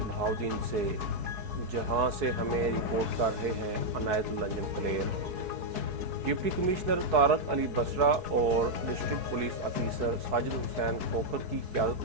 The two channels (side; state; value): left; late; 4.6 ms